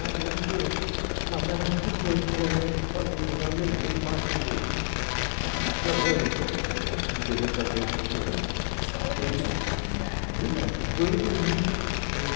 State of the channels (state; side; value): silent; right; digital silence